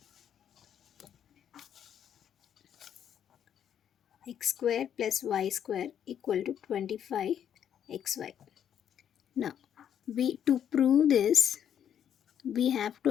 x square plus y square equal to 25xy. Now to prove this, we have to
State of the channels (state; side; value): quieter; right; 9.3 dB